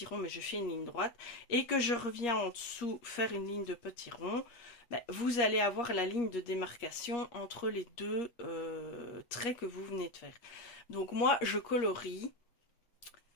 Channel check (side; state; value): right; late; 8.4 ms